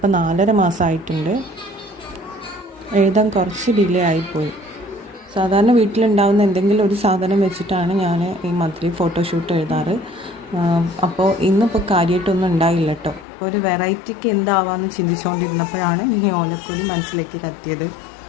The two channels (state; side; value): drops out; right; at 13.2 s